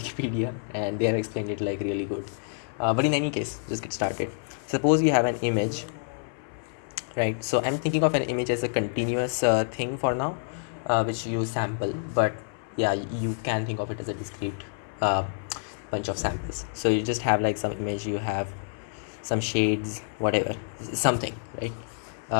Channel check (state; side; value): silent; right; 60 dB below the other